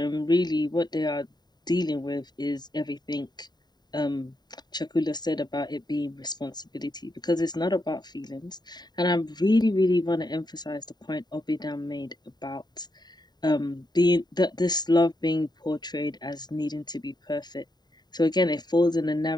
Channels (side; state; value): right; late; 0.20 ms